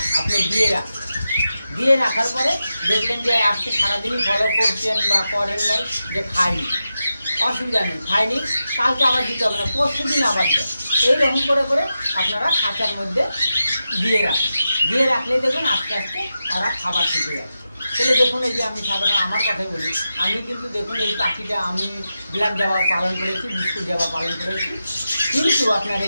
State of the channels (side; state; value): both; inverted; correlation -0.90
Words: আপনি দিয়ে রাখার পরে দেখলেন যে আজকে সারাদিনই ফলো করছেন বা করেন নাই, যে খাইনি, অসুবিধা নেই, খাইনি, কালকে আবার দিতে হবে না, পরশু দিন আবার দেন। এইরকম করে আপনারা খাঁচার মধ্যে দিয়ে রাখলেই দেখবেন আস্তে আস্তে ওরা খাবার শিখে যাচ্ছে। তাহলে দেখুন, এই যে আমি সাধারণ আমার কথাই বলি, আমি কিন্তু দেখুন এই পাখিটা আমি ব্ল্যাক জাবা পালন করেছি, বিস্কুট জাবা পালন করেছি, কিন্তু আপনার